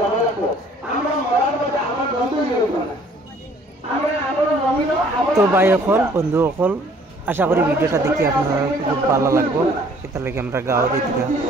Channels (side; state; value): both; normal; correlation 0.58